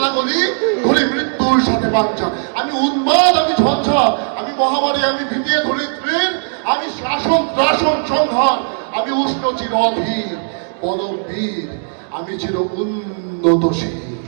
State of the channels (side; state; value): left; silent; digital silence